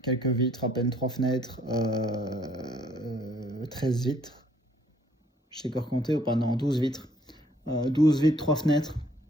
Quelques vitres, à peine 3 fenêtres, 13 vitres. Je sais encore compter ou pas? Non, 12 vitres. 12 vitres, 3 fenêtres.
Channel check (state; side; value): normal; both; correlation 0.63